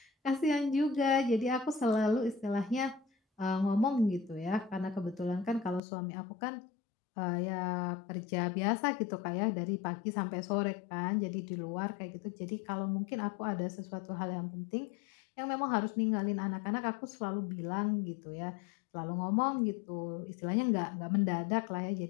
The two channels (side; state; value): right; drops out; at 5.8 s